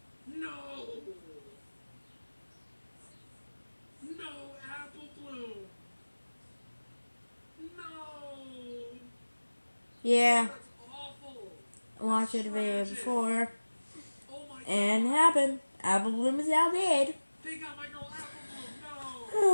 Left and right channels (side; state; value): both; inverted; correlation -1.00